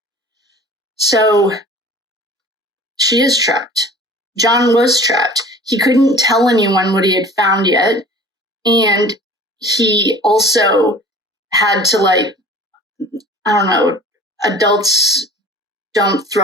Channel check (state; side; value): normal; both; correlation 0.44